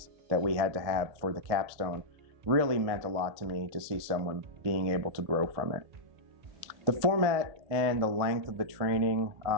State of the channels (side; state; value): left; late; 1.8 ms